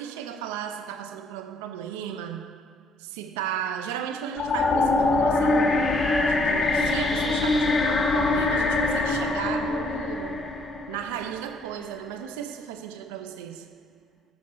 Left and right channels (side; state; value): both; normal; correlation 0.65